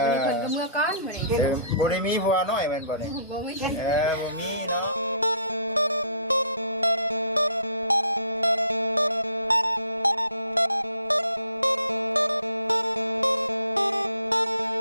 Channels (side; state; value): both; inverted; correlation -0.59